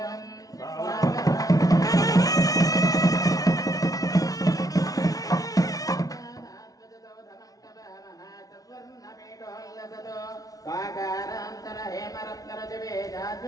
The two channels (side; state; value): right; late; 0.18 ms